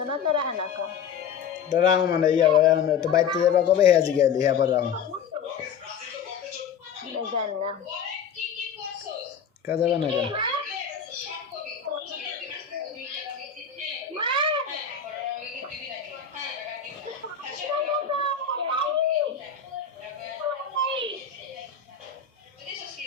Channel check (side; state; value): right; quieter; 7.0 dB